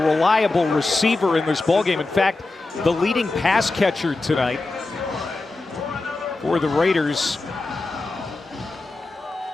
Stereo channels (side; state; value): right; quieter; 3.3 dB